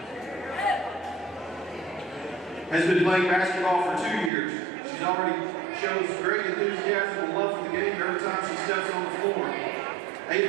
has been playing basketball for 2 years. She's already shows great enthusiasm and love for the game every time she steps on the floor.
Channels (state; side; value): drops out; left; at 4.3 s